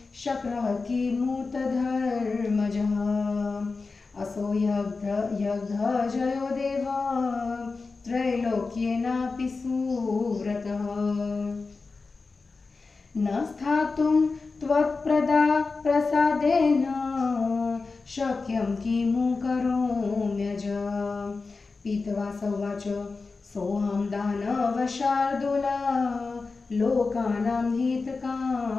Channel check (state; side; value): quieter; right; 4.1 dB